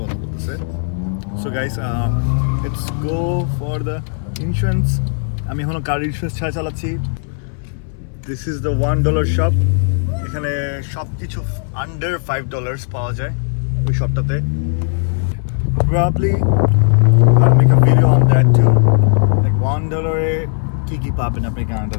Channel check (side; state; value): right; silent; 68 dB below the other